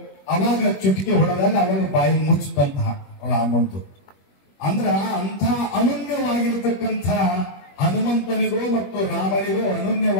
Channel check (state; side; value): late; right; 21 ms